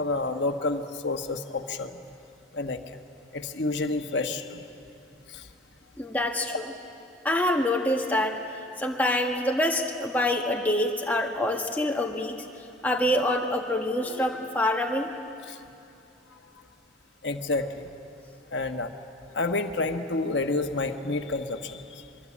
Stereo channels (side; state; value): both; normal; correlation 0.42